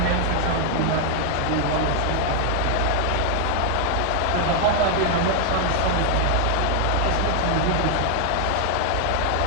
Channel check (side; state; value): both; different; correlation 0.00